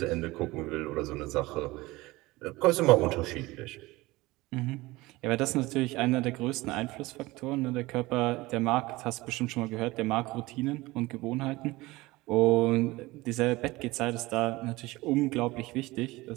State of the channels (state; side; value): quieter; left; 20.4 dB